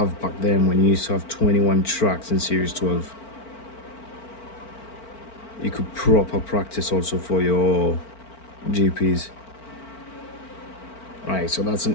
back then when you used to have 21 tracks in Series 12. You could proper practice also for your GPs. Right, so that's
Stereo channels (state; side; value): late; right; 4.4 ms